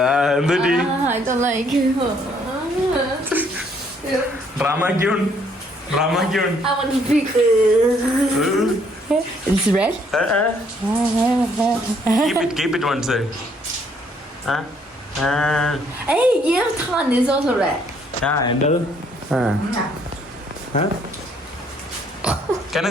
എന്തുപറ്റി? I don't like it. Drama queen. I want to puke. It's red? Keep it one side. Hey, your tongue is also red. എന്റത് Can I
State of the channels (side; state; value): both; normal; correlation 0.66